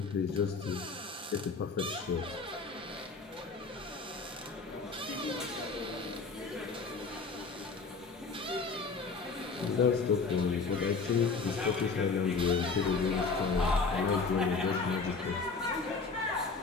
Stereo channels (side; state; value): right; quieter; 4.5 dB